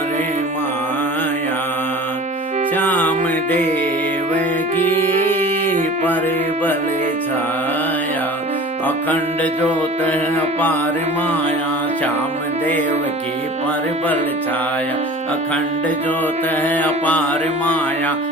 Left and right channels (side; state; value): both; normal; correlation 0.41